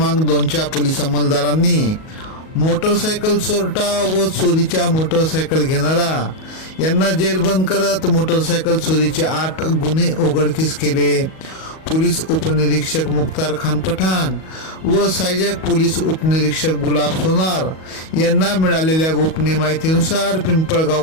2च्या पोलीस अंमलदारांनी मोटरसायकल चोरटा व चोरीच्या मोटरसायकल घेणारा यांना जेरबंद करत मोटरसायकल चोरीचे 8 गुन्हे उघडकीस केले। पोलीस उपनिरीक्षक मुख्तार खान पठाण व सहाय्यक पोलीस उपनिरीक्षक गुलाब सोनार यांना मिळालेल्या गोपनीय माहितीनुसार पिंपळगाव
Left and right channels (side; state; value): right; late; 38 ms